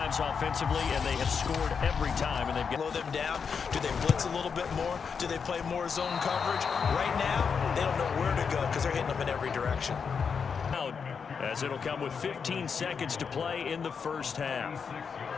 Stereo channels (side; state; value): right; quieter; 6.1 dB